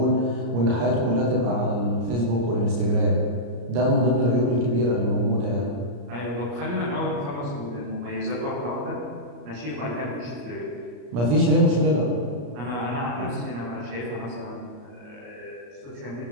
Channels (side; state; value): left; late; 34 ms